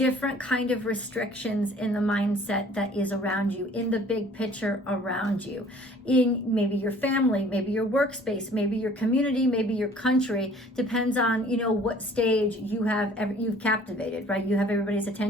kind of restrictions in the mindset that is around you, in the big picture around you, in maybe your family, maybe your workspace, maybe your community, maybe your country. Depends on, you know, what stage you've captivated, right? You have everybody's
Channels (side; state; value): both; normal; correlation 0.52